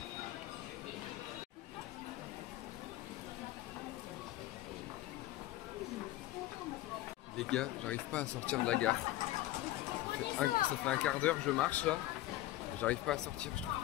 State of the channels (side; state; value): right; quieter; 15.5 dB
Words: Les gars, j'arrive pas à sortir de la gare. Ça fait un quart d'heure que je marche là. J'arrive pas à sortir,